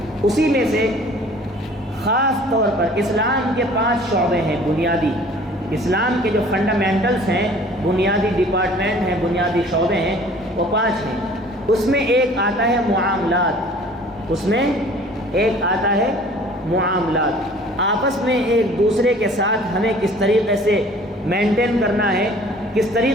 اسی میں سے خاص طور پر اسلام کے 5 شعبے ہیں بنیادی، اسلام کے جو فنڈامنٹلز ہیں، بنیادی ڈپارٹمنٹ ہیں، بنیادی شعبے ہیں، وہ 5 ہیں۔ اس میں ایک آتا ہے معاملات، اس میں ایک آتا ہے معاملات، آپس میں ایک دوسرے کے ساتھ ہمیں کس طریقے سے مینٹین کرنا ہے، کس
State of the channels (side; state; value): both; normal; correlation 0.50